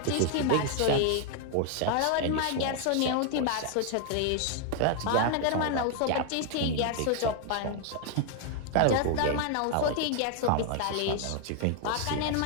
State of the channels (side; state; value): both; different; correlation 0.00